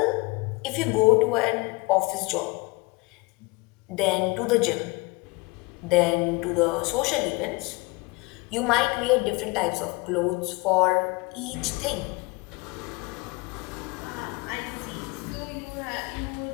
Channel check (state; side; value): quieter; right; 26.1 dB